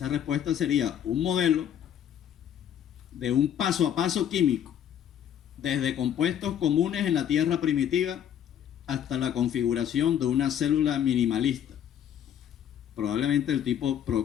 respuesta sería un modelo de un paso a paso químico, desde compuestos comunes en la Tierra primitiva hasta la configuración de una célula minimalista, probablemente del tipo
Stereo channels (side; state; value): right; quieter; 9.7 dB